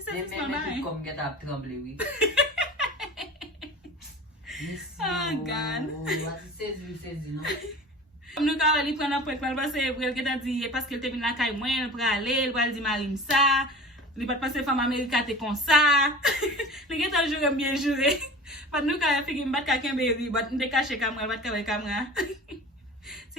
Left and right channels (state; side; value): normal; both; correlation 0.37